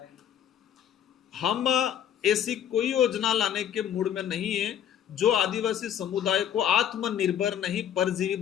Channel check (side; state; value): right; quieter; 9.6 dB